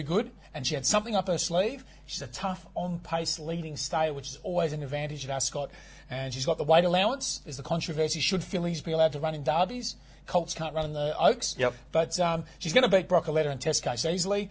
good, and she had something up her sleeve. She's a tough, on-pace leading stayer, which is always an advantage at Ascot. And she's got the weight allowance. There's the controversy, should fillies be allowed to run in derbies? Colts can't run in the Oaks. But she's going to beat Broccoletta and Test Case easily.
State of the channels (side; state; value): both; identical; correlation 1.00